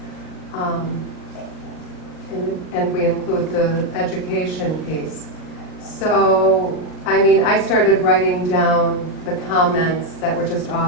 And we include the education piece. So, I mean, I started writing down the comments that were just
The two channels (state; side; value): late; right; 39 ms